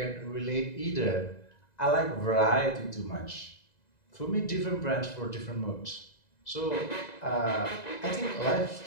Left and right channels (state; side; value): late; right; 2.0 ms